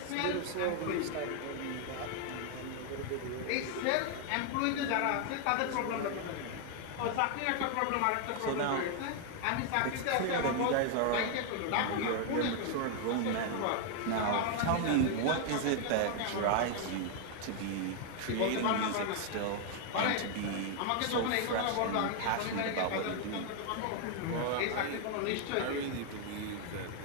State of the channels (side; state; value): both; different; correlation 0.00